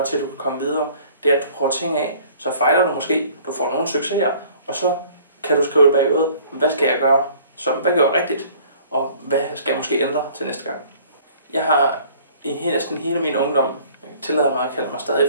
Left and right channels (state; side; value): inverted; both; correlation -0.52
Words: til, at du kan komme videre. Det er, at du prøver ting af, så fejler du måske, du får nogle succeser, og så kan du skrive bagud, hvad skal jeg gøre, hvad gør jeg rigtigt, og hvad skal jeg måske ændre til næste gang. Jeg har i næsten hele min ungdom, jeg tillader mig at kalde mig